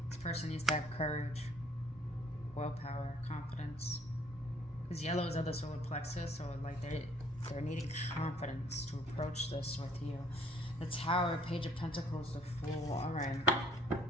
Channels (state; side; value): normal; both; correlation 0.60